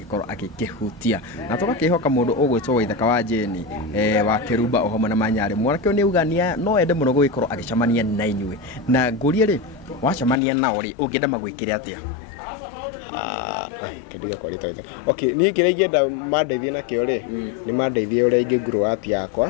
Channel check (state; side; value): drops out; right; at 10.4 s